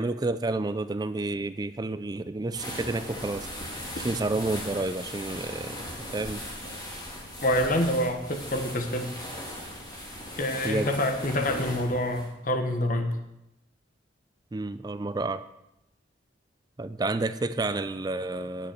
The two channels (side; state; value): both; normal; correlation 0.43